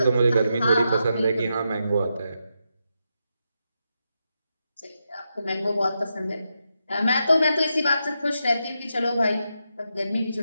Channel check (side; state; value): both; inverted; correlation -0.85